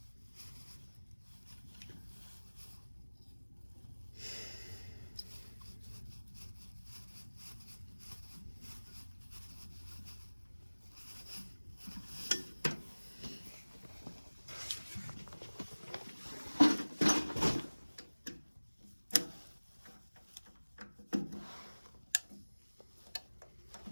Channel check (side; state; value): both; inverted; correlation -1.00